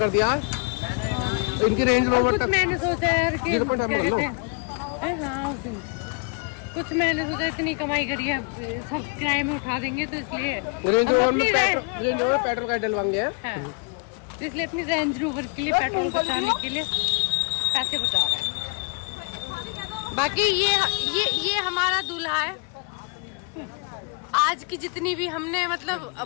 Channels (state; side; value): quieter; right; 34.4 dB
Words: दिया। इनकी रेंज और कुछ मैंने सोचा यार कि क्या कहते हैं, हाँ उस दिन कुछ मैंने सोचा इतनी कमाई करी है, सब किराए में उठा देंगे, तो इसलिए पेट्रोल का डलवाएंगे, इसलिए अपनी रेंज रोवर के लिए पेट्रोल बचाने के लिए पैसे बचा रहे हैं। बाकी ये हमारा दूल्हा है। आज की जितनी भी हमने मतलब